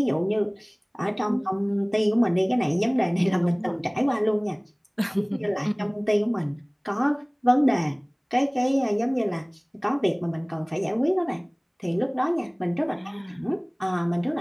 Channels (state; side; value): identical; both; correlation 1.00